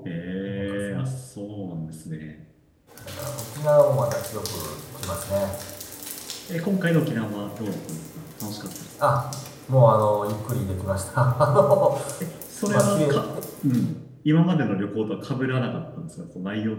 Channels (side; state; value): both; identical; correlation 1.00